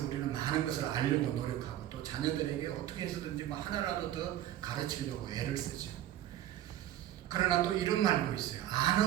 우리는 많은 것을 알려고 노력하고 또 자녀들에게 어떻게 해서든지 뭐 하나라도 더 가르치려고 애를 쓰죠. 그러나 또 이런 말도 있어요.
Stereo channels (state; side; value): quieter; left; 12.4 dB